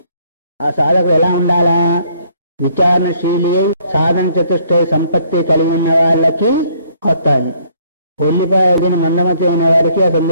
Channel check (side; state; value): both; inverted; correlation -0.64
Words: ఆ సాధకుడు ఎలా ఉండాలా? విచారణశీలి, సాధన చతుష్టయ సంపత్తి కలిగి ఉన్న వాళ్ళకి వస్తాయి. ఉల్లిపాయ మందమతి ఉన్న వారికి ఆ